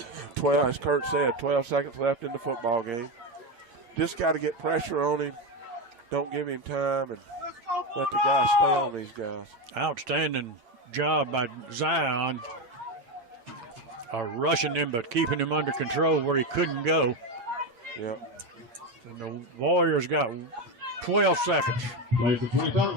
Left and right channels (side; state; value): left; late; 8.5 ms